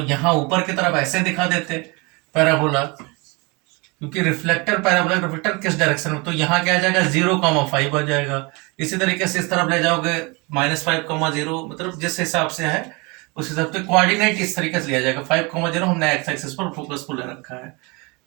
यहाँ ऊपर की तरफ ऐसे दिखा देते पैराबोला, क्योंकि रिफ्लेक्टर पैराबोला रिफ्लेक्टर किस डायरेक्शन में, तो यहाँ क्या आ जाएगा 0,5 आ जाएगा। इसी तरीके से इस तरफ ले जाओगे -5,0, मतलब जिस हिसाब से है उस हिसाब से कोऑर्डिनेट इस तरीके से लिया जाएगा। 5,0 हमने एक्स एक्सिस पर फोकस को ले रखा है।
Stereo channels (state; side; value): quieter; left; 27.9 dB